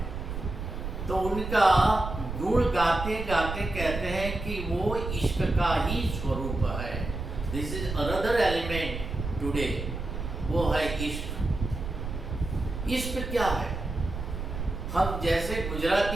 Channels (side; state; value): right; noise; rumble, 6 dB below the sound